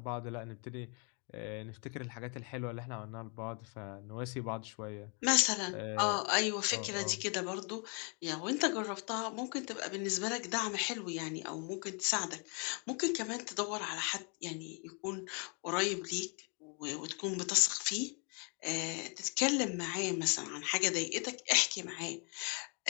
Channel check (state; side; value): quieter; right; 36.3 dB